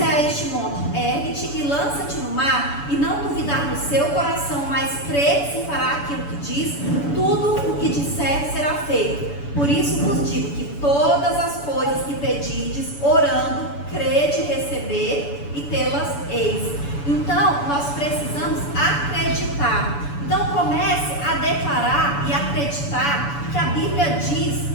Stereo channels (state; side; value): late; right; 7.0 ms